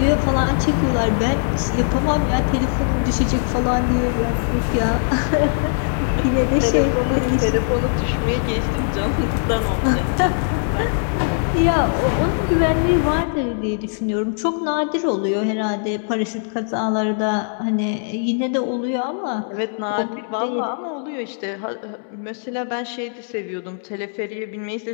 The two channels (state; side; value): silent; right; 65 dB below the other